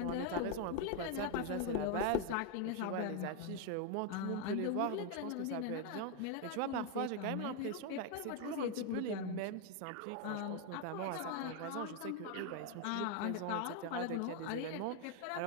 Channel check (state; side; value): different; both; correlation 0.01